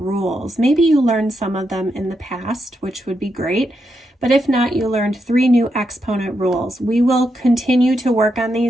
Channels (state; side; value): normal; both; correlation 0.83